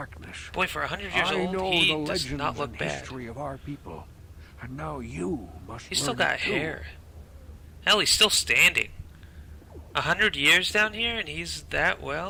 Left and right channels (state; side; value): identical; both; correlation 1.00